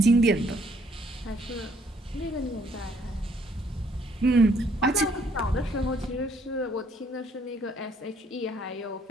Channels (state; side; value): normal; both; correlation 0.65